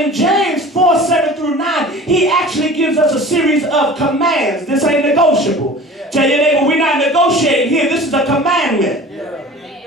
in James 4:7-9, he actually gives us a series of commands. This ain't negotiable. Tell your neighbor, we're not negotiating here. This is a commandment.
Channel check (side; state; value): both; normal; correlation 0.41